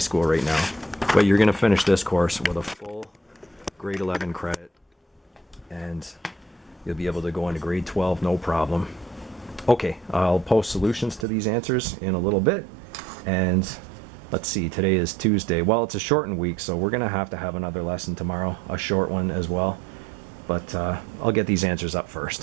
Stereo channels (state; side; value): drops out; left; at 11.2 s